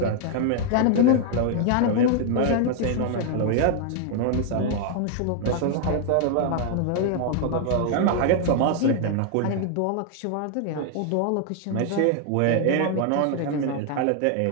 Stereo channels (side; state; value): both; different; correlation 0.00